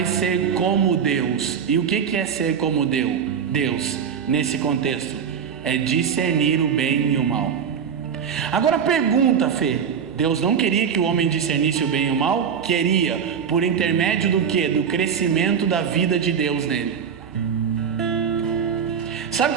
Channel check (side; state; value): left; quieter; 7.3 dB